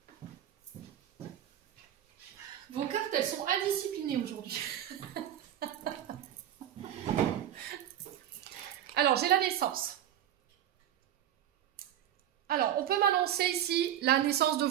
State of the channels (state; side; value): quieter; left; 11.2 dB